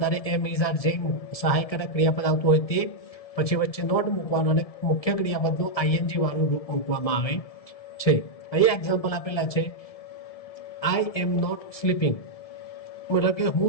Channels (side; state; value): right; late; 1.7 ms